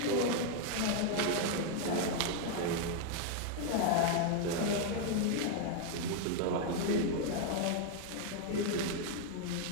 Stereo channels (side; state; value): both; different; correlation 0.00